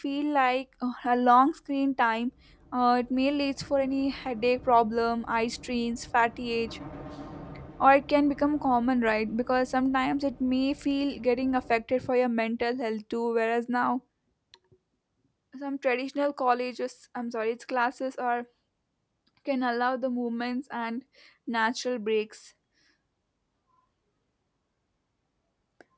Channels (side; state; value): both; identical; correlation 1.00